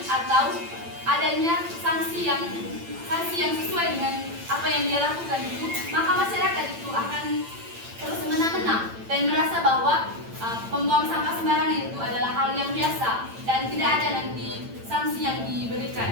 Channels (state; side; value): late; left; 8.9 ms